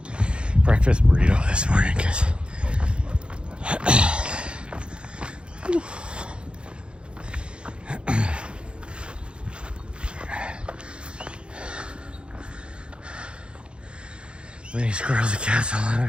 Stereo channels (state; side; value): late; left; 0.055 ms